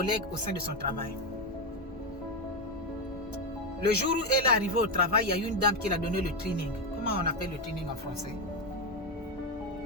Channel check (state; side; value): normal; both; correlation 0.09